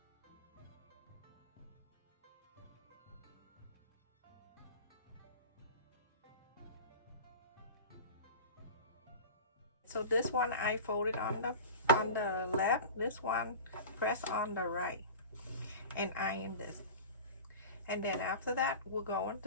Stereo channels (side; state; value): both; inverted; correlation -0.34